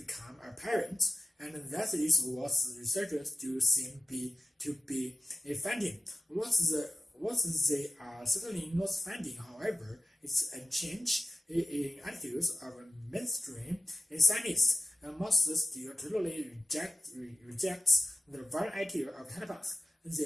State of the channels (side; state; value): both; normal; correlation 0.91